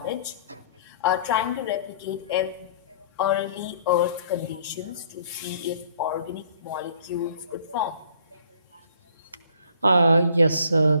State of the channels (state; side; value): inverted; both; correlation -0.56